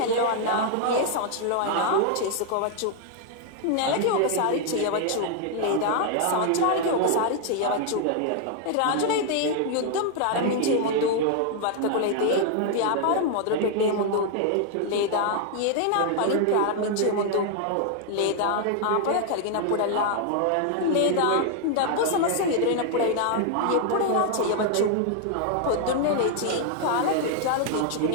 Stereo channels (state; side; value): different; both; correlation 0.00